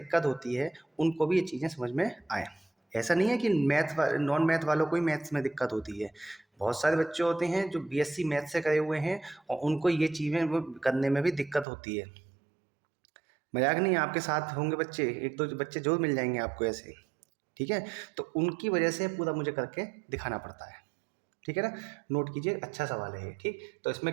होती है उनको भी ये चीज़ें समझ में आए। ऐसा नहीं है कि नॉन मैथ वालों को ही मैथ्स में दिक्कत होती है, बहुत सारे बच्चे होते हैं जो बीएससी मैथ से करे हुए हैं और उनको ये चीज़ें वो करने में भी दिक्कत होती है। मजाक नहीं है, आपके साथ होंगे बच्चे, एक दो बच्चे जरूर मिल जाएंगे आपको ऐसे। ठीक है, तो उनकी वजह से पूरा मुझे करके दिखाना पड़ता है। ठीक है ना, नोट कीजिए, अच्छा सवाल है ये। ठीक, तो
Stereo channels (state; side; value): drops out; left; at 11.7 s